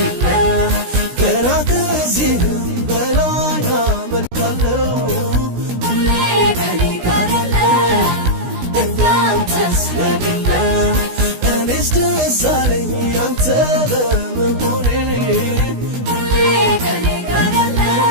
ገና ከዚህም በላይ አመልካለሁ ሁሌ ከኔ ጋር ያለ እንዳንተስ የሌለ እኔስ ደስ አለኝ አንተ በመሆኔ ሁሌ ከኔ ጋር ያለ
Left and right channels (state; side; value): late; left; 16 ms